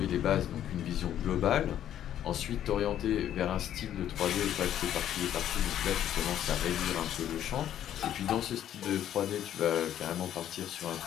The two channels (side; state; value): right; quieter; 11.0 dB